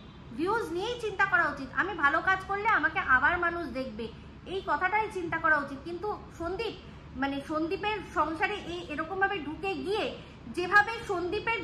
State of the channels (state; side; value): identical; both; correlation 1.00